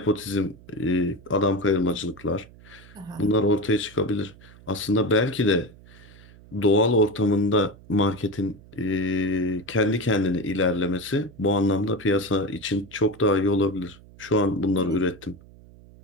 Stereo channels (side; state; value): right; noise; hum, 22 dB below the sound